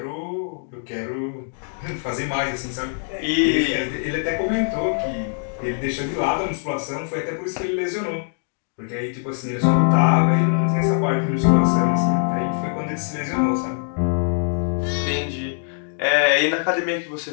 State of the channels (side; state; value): right; silent; 64 dB below the other